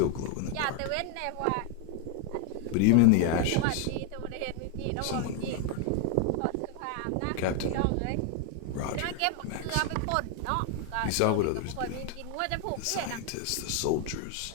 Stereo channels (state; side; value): different; both; correlation 0.01